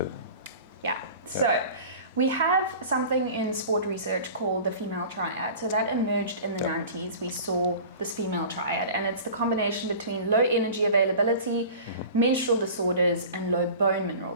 Yeah. So we have something in sport research called the female triad. So that emerged in the 90s. We saw this female triad, and it's the combination between low energy availability, menstrual disorders, and low bone mineral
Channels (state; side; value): inverted; both; correlation -0.40